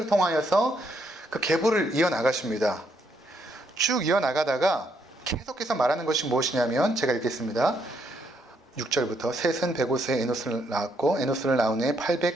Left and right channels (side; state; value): both; normal; correlation 0.74